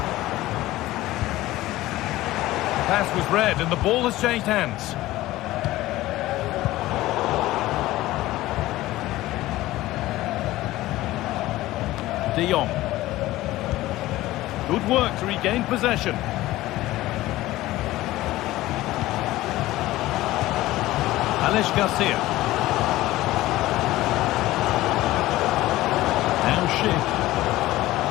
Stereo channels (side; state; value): right; quieter; 16.8 dB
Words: Pass was read and the ball has changed hands. De Jong. Good work to regain possession. Alex Garcia. Now Schick.